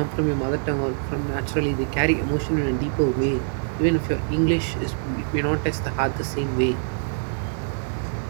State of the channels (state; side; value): silent; left; 62 dB below the other